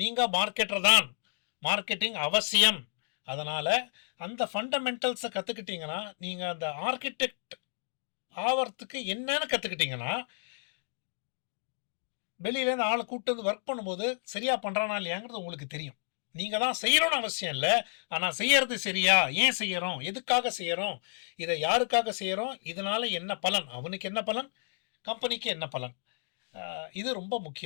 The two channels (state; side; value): silent; right; digital silence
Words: மார்க்கெட்டர் தான், மார்க்கெட்டிங் அவசியம். அதனால் அந்த ஃபண்டமெண்டல்ஸை கற்றுக்கிட்டிங்கன்னா, நீங்கள் அந்த ஆர்கிடெக்ட் ஆகிறதுக்கு என்னன்னு கற்றுக்கிட்டிங்கன்னா, வெளியிலேருந்து ஆளை கூப்பிட்டு வந்து ஒர்க் பண்ணும்போது சரியாக பண்ணுறானா இல்லையாங்கிறது உங்களுக்கு தெரியும். நீங்கள் தான் செய்யணும்னு அவசியம் இல்லை, ஆனால் செய்யறது சரியா, ஏன் செய்கிறோம், எதுக்காக செய்கிறோம், இதை யாருக்காக செய்கிறோம், இதனால் என்ன பலன், அவனுக்கு என்ன பலன், கம்பெனிக்கு என்ன பலன், இது ரொம்ப